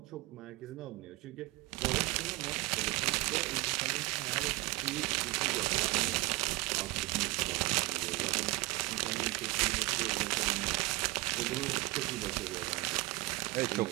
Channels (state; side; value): quieter; left; 19.6 dB